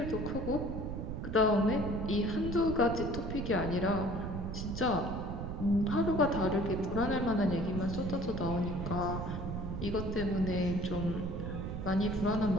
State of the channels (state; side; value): noise; right; rumble, 5 dB below the sound